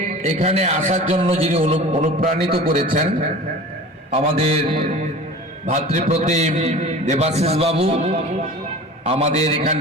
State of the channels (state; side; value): normal; both; correlation 0.38